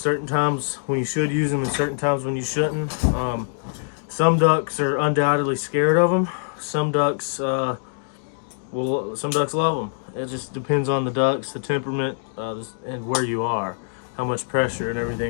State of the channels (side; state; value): right; silent; digital silence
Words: times when you should use them and certain times when you shouldn't. Some ducks are undoubtedly scared of them. Some ducks love them. It just depends on the ducks, the temperament, and where you are, how much pressure and